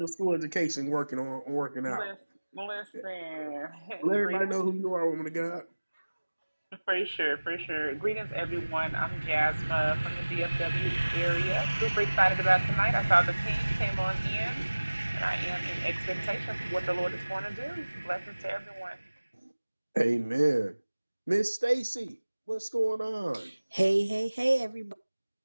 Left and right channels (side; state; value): both; inverted; correlation -1.00